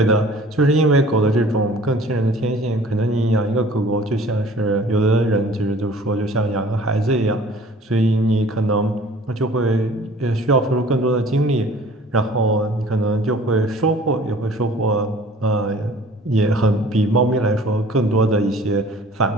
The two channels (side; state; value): both; normal; correlation 0.49